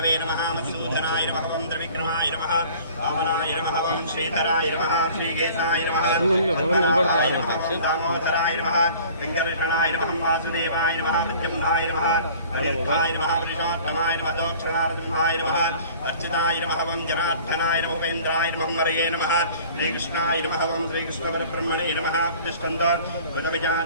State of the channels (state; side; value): inverted; both; correlation -0.48